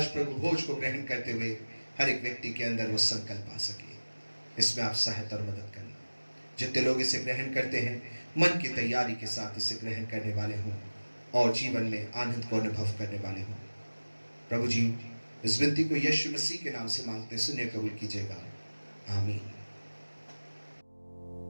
प्रभु भोज को ग्रहण करते हुए हर एक व्यक्ति के अंदर वो संकल्प आ सके, इसमें आप सहायता और मदद करना। जितने लोग इसे ग्रहण करते हैं मन की तैयारी के साथ इसे ग्रहण करने वाले हों और जीवन में आनंद को अनुभव करने वाले हों। प्रभु जी, इस विनती को यीशु मसीह के नाम से मांगते सुनिए, कबूल कीजिएगा। आमीन।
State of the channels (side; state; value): both; inverted; correlation -1.00